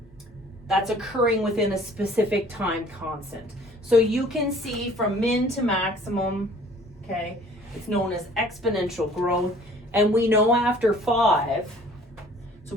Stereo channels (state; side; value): normal; both; correlation 0.53